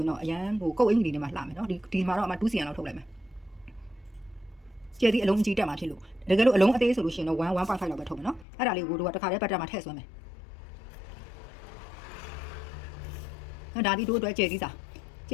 င်တော့အရန်ဟိုကုတ်အင်္ဂလိပ်တွေမှာလှမယ်နော်ဒီမှာတော့အမ 2cm လောက်ထုတ်လိုက်မယ်ကျဲသီးအလုံးကြီးတက်မှာဖြစ်လို့တကယ်လို့အလုံးအသေးဆိုလို့ရှိရင်တော့1.5 လောက်ပဲထုတ်မယ်နော်အဲ့ဒါလေးကိုတို့ကတစ်ခါတည်းပတ်တက်မှာထည့်ဆွဲမယ်ဒါဒီတို့အတွက်ကျဲသီ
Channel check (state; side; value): drops out; right; at 8.5 s